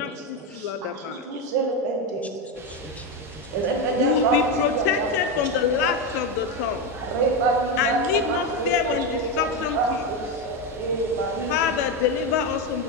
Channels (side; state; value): both; normal; correlation 0.12